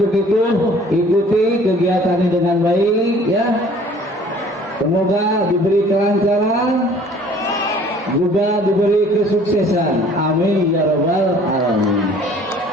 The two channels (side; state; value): both; normal; correlation 0.53